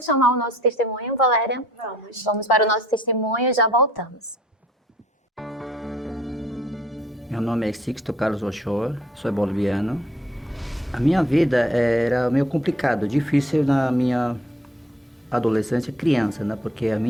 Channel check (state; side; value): normal; both; correlation 0.60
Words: chamar o nosso testemunho, Valéria? Vamos para o nosso testemunho e já voltamos. Meu nome é Sixto Carlos Ochoa, sou boliviano. A minha vida era meio complicado, difícil na minha adolescência, criança, né? Porque a